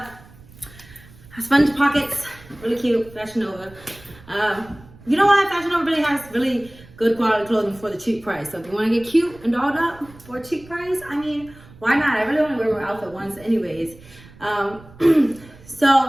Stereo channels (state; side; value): noise; right; rumble, 22 dB below the sound